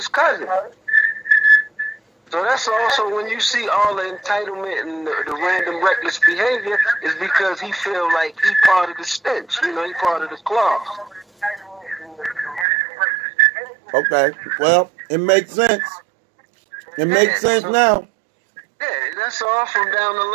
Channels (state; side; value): drops out; left; at 12.7 s